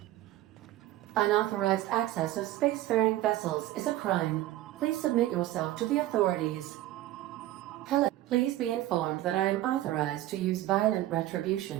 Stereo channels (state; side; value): quieter; left; 14.8 dB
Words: Unauthorized access of spacefaring vessels is a crime. Please submit yourself to the authorities. Hello. Please be informed that I am authorized to use violent